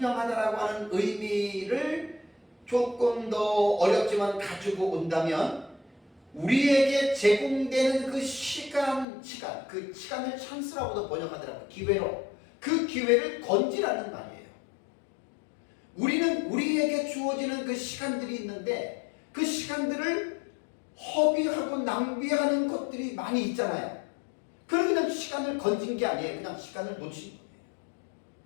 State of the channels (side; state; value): right; drops out; at 9.1 s